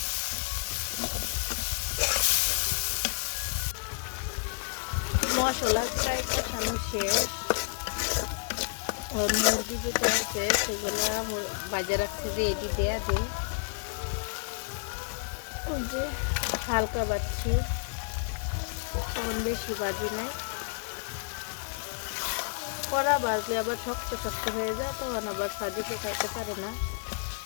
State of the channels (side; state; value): right; silent; digital silence